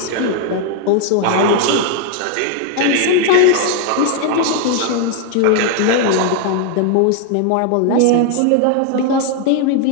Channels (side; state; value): both; different; correlation 0.00